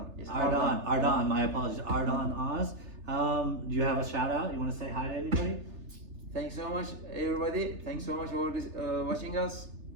Yes, Ardan. My apologies. Ardan Oz. Do you have a shout out? You want to say hi to anybody? Thanks so much, everybody. Thanks so much for watching us.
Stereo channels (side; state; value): left; late; 3.3 ms